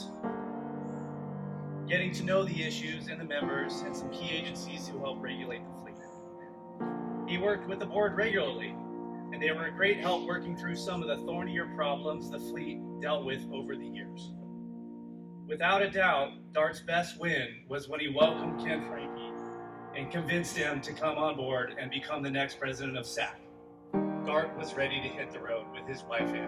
getting to know the issues and the members and some key agencies who help regulate the fleet. He worked with the board regularly, and they were a great help working through some of the thornier problems the fleet dealt with over the years. Without a doubt, Dart's best win was when he welcomed Ken Franke and convinced him to come on board and become the next president of SAC. Dart was ready to hit the road with his wife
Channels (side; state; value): both; identical; correlation 1.00